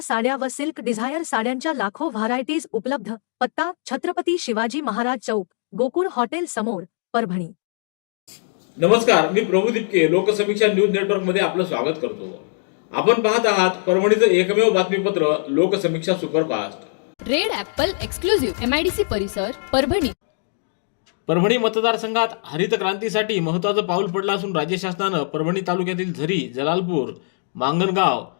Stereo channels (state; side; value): silent; right; digital silence